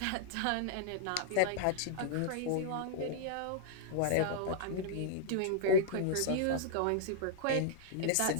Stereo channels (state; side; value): different; both; correlation -0.02